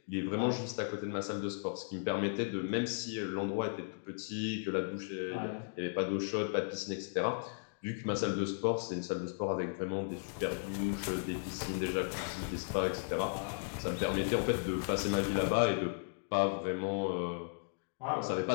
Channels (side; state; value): right; silent; digital silence